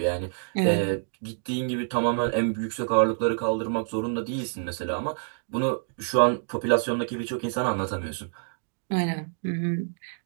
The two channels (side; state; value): left; silent; digital silence